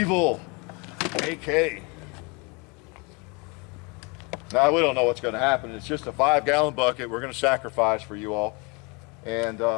AK. Now we don't know what's going to happen. It's just a 5-gallon bucket we're going to sacrifice for you all, and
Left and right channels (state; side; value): quieter; right; 30.2 dB